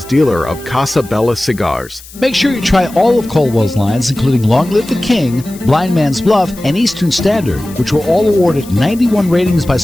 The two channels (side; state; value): left; noise; hiss, 19 dB below the sound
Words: dealer of Casa Bella cigars. Make sure you try all of Caldwell's lines, including Long Live the King, Blind Man's Bluff, and Eastern Standard, which were all awarded 91 ratings by